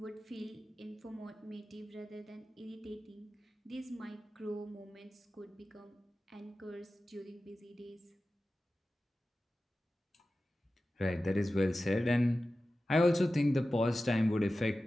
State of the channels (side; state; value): both; normal; correlation 0.94